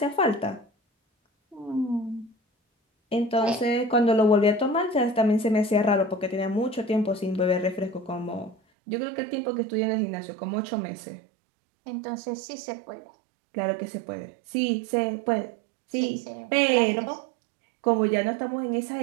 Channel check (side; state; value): left; drops out; at 8.6 s